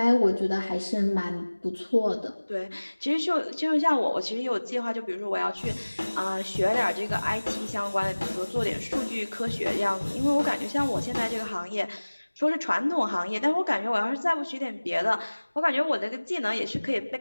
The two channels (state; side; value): inverted; both; correlation -1.00